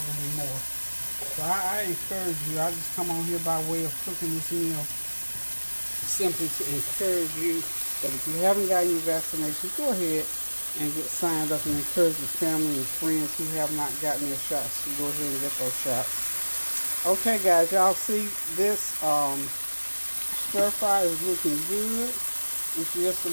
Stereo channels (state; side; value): inverted; both; correlation -1.00